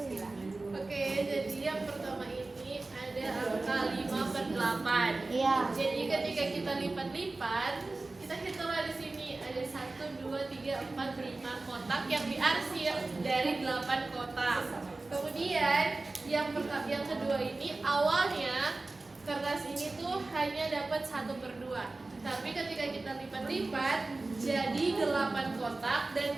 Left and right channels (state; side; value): quieter; left; 3.2 dB